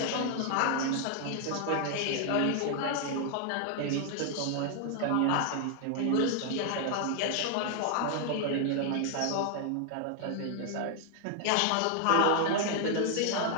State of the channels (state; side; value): different; both; correlation 0.00